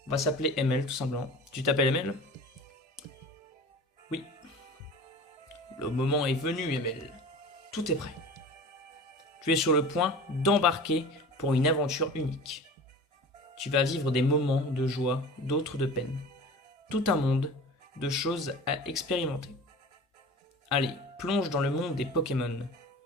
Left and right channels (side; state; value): both; normal; correlation 0.37